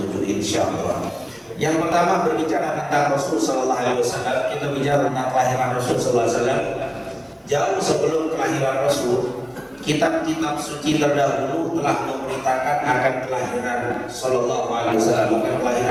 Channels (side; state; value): both; identical; correlation 1.00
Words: insyaallah. Yang pertama berbicara tentang Rasul Sallallahu Alaihi Wasallam, kita bicara tentang kelahiran Rasul Sallallahu Alaihi Wasallam. Jauh sebelum kelahiran Rasul, kitab-kitab suci terdahulu telah memberitakan akan kelahiran Sallallahu Alaihi Wasallam, bukan